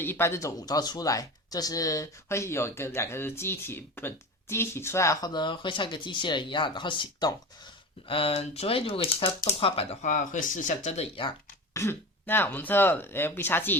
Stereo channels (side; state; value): both; normal; correlation 0.30